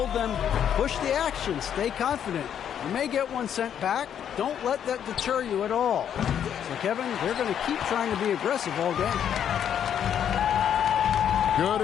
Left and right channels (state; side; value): quieter; right; 9.1 dB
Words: them, push the action, stay confident. You may get one sent back. Don't let that deter you at all. So, Kevin, they're going to keep trying to be aggressive all game. Good